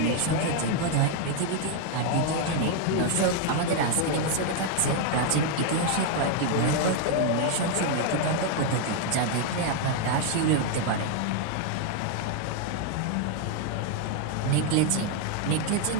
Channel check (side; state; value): both; different; correlation 0.00